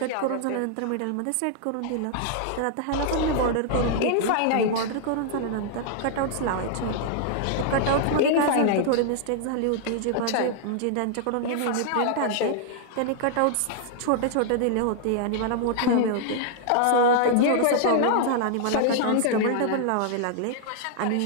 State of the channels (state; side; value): different; both; correlation -0.01